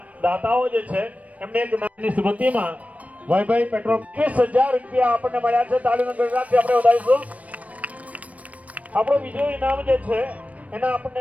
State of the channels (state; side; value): late; left; 0.068 ms